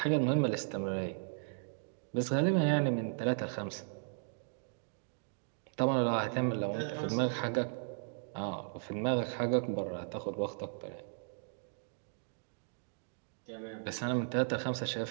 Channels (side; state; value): left; silent; digital silence